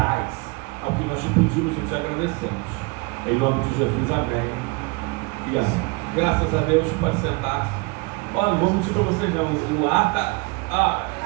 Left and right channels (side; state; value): left; quieter; 27.5 dB